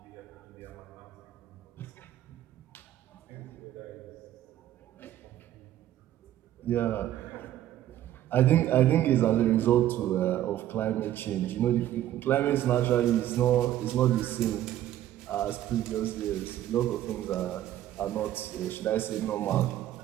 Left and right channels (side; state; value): left; quieter; 12.7 dB